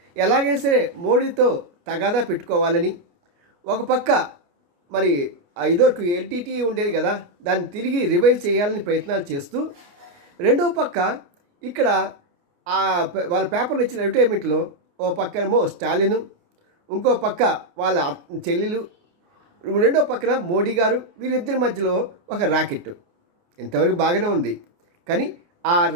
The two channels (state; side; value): late; left; 29 ms